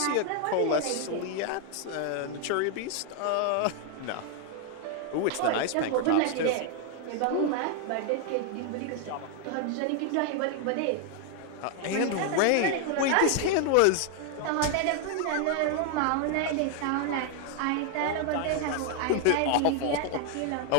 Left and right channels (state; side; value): different; both; correlation 0.00